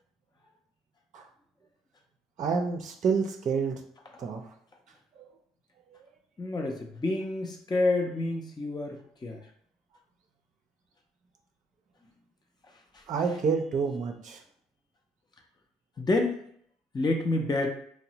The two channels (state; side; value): normal; both; correlation 0.72